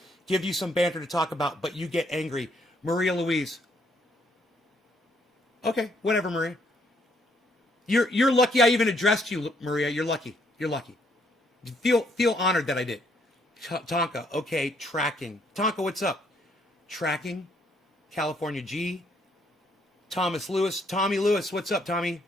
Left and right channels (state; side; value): normal; both; correlation 0.70